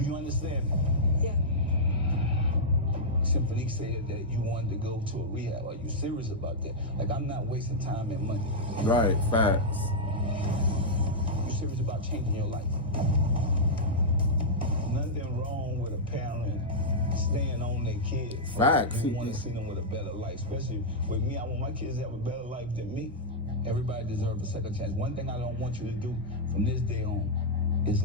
you understand? Yeah. Symphony said that you wanted to go to a rehab. Are you serious about that? Like, I'm not wasting time and money. Right, facts. You serious about changing your life? Nothing wrong with a parent staying on their kids. Facts. You want to see them with a better life. Especially with me, I want my kids to have a better life than me. Everybody deserves a second chance. One thing I don't want you to do from this day on is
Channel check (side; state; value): both; normal; correlation -0.07